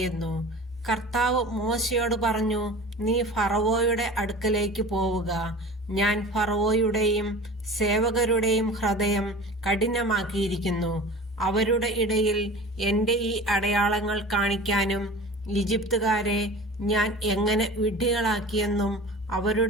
കർത്താവ് മോശയോട് പറഞ്ഞു, നീ ഫറവോയുടെ അടുക്കലേക്ക് പോവുക. ഞാൻ ഫറവോയുടെയും സേവകരുടെയും ഹൃദയം കഠിനമാക്കിയിരിക്കുന്നു. അവരുടെ ഇടയിൽ എൻ്റെ ഈ അടയാളങ്ങൾ കാണിക്കാനും ഈജിപ്തുകാരെ ഞാൻ എങ്ങനെ വിഡ്ഢികളാക്കിയെന്നും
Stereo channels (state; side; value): normal; both; correlation 0.38